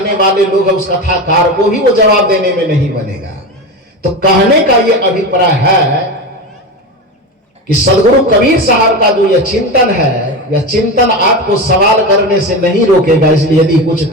वाले लोग हैं उस कथाकार को भी वो जवाब देने में नहीं बनेगा। तो कहने का ये अभिप्राय है कि सदगुरु कबीर साहब का जो यह चिंतन है, यह चिंतन आपको सवाल करने से नहीं रोकेगा। इसलिए यदि कुछ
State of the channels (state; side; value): normal; both; correlation 0.22